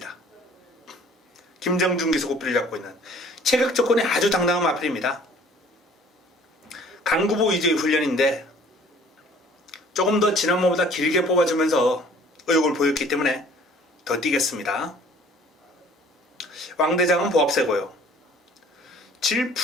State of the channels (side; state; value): both; normal; correlation 0.53